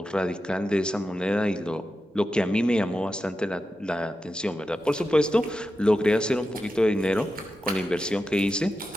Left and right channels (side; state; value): both; normal; correlation 0.90